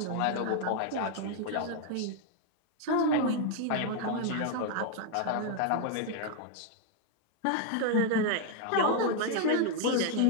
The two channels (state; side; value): different; both; correlation 0.00